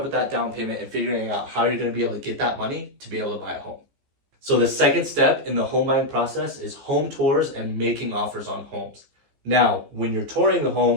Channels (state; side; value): late; left; 15 ms